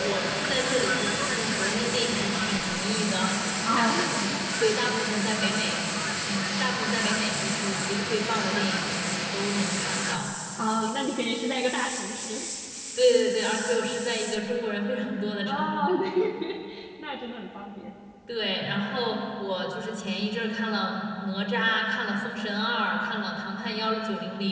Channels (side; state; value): both; identical; correlation 1.00